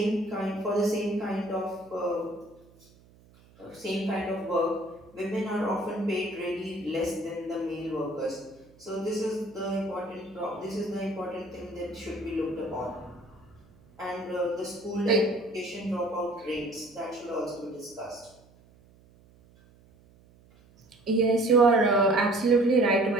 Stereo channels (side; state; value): right; noise; hum, 27 dB below the sound